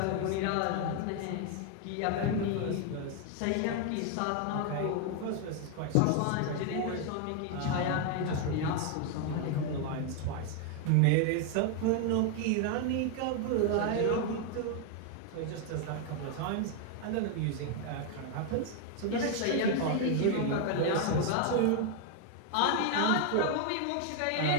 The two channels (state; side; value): different; both; correlation 0.01